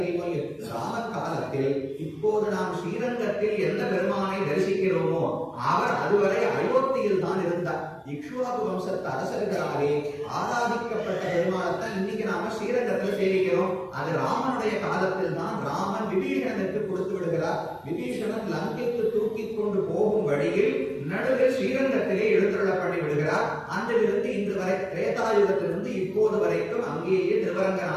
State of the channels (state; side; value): identical; both; correlation 1.00